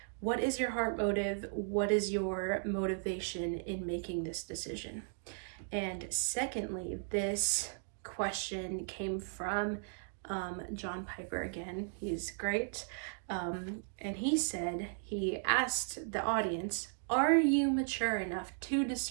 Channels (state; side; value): silent; left; digital silence